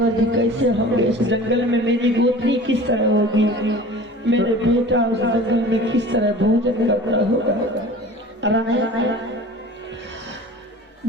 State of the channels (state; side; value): normal; both; correlation 0.41